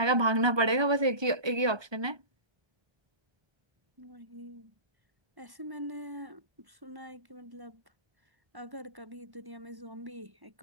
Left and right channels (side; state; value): left; late; 1.2 ms